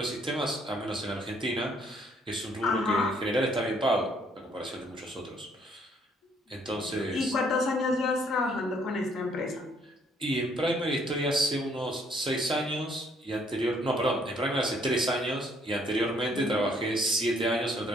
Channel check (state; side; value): normal; both; correlation 0.65